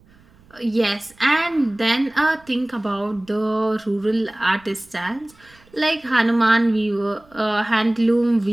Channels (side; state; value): right; noise; rumble, 29 dB below the sound